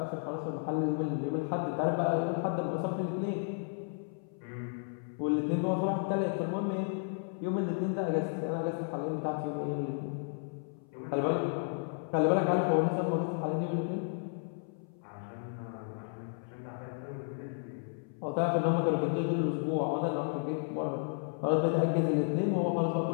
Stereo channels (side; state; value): right; silent; 56 dB below the other